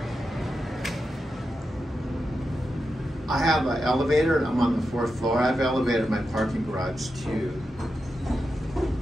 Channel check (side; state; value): both; normal; correlation 0.89